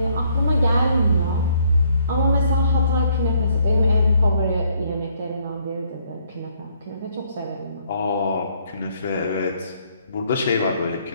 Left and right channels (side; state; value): both; inverted; correlation -0.67